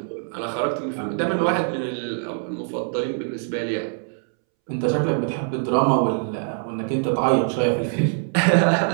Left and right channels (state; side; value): silent; left; 63 dB below the other